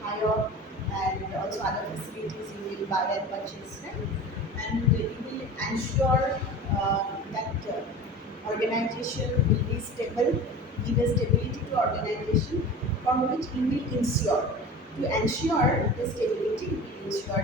hire, and also other facilities you will buy and purchase. Right? And you will ensure that organization will be stable, give a stability to organization, from which you will ensure. To ensure the stability, you will ensure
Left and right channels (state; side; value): normal; both; correlation 0.35